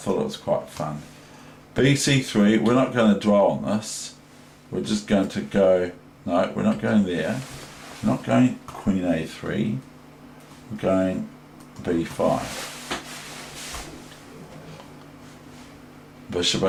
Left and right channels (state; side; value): identical; both; correlation 1.00